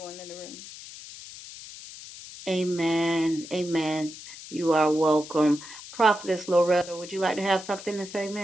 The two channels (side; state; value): left; noise; hiss, 14 dB below the sound